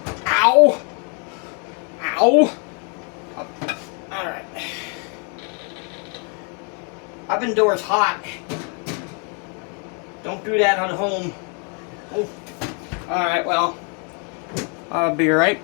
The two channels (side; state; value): right; quieter; 37.7 dB